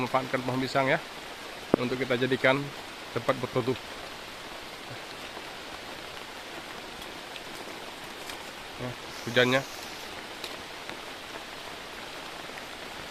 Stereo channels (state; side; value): identical; both; correlation 1.00